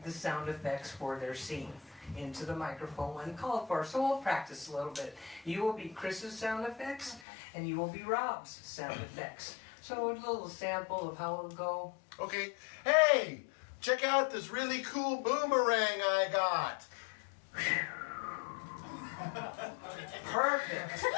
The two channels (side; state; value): right; drops out; at 7.2 s